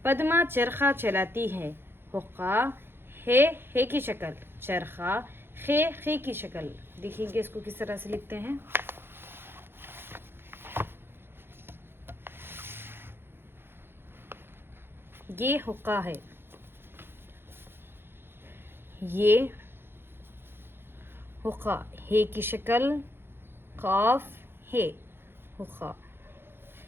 पद्मा चरखा चलाती है। हुक्का है की शक्ल, चरखा खे की शक्ल। देखिए इसको किस तरह से लिखते हैं। ये हुक्का है, ये हुक्का है की शक्ल, काफ है हुक्का।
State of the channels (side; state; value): left; late; 0.11 ms